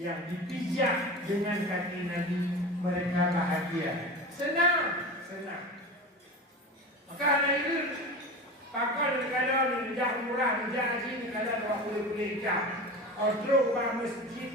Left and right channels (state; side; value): normal; both; correlation 0.30